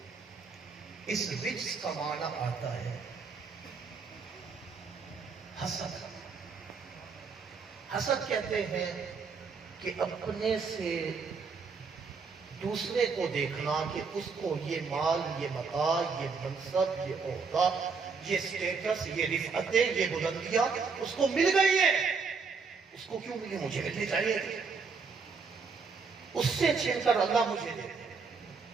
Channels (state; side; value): quieter; left; 5.0 dB